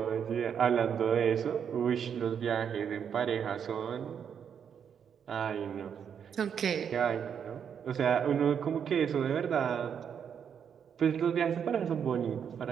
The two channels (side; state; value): left; quieter; 7.8 dB